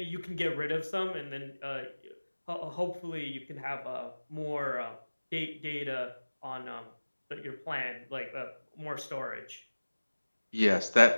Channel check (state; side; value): inverted; both; correlation -1.00